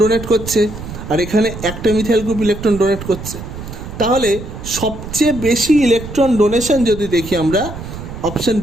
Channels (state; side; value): noise; right; rumble, 10 dB below the sound